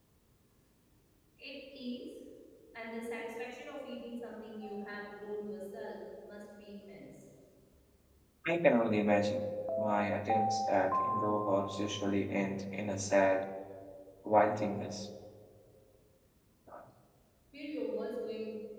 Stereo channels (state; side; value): identical; both; correlation 1.00